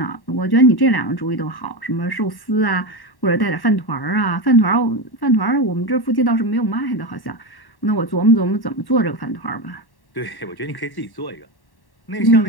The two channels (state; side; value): late; right; 1.1 ms